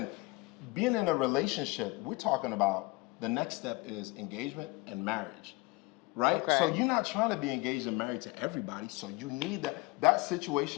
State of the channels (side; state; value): right; quieter; 24.3 dB